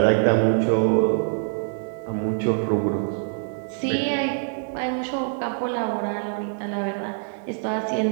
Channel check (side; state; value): left; silent; digital silence